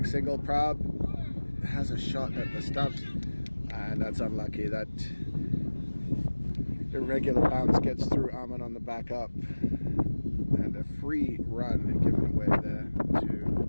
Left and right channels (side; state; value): both; inverted; correlation -1.00